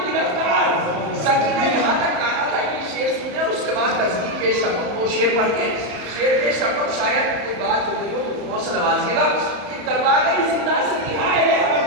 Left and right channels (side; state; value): left; late; 34 ms